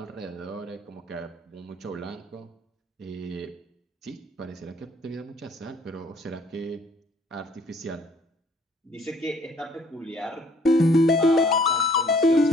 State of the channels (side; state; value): both; normal; correlation 0.60